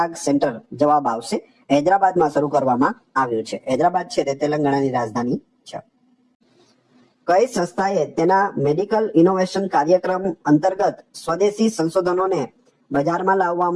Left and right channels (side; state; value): both; identical; correlation 1.00